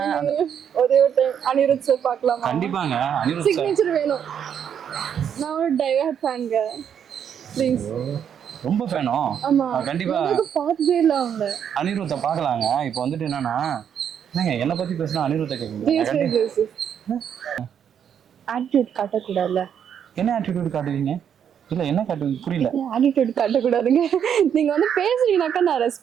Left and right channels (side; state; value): left; quieter; 8.5 dB